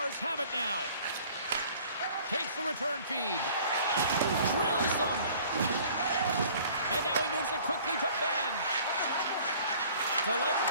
have it now. Takes the return feed. Drills them. And now he moves it quickly to Ben. Delayed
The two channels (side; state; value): both; inverted; correlation -0.51